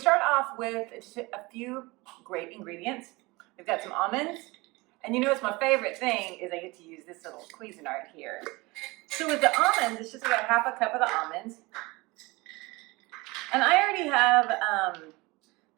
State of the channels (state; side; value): quieter; left; 23.4 dB